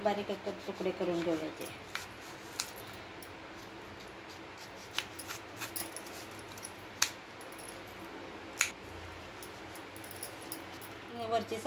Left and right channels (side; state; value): both; identical; correlation 1.00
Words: बारीक एक तुकडे करून घेऊयाचे। वरची